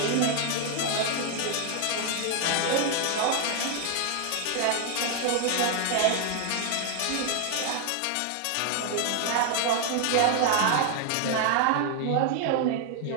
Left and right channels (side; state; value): both; different; correlation 0.00